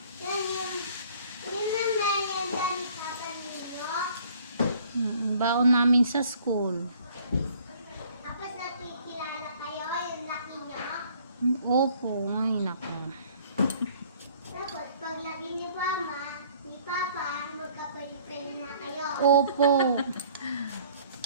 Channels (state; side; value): inverted; both; correlation -0.56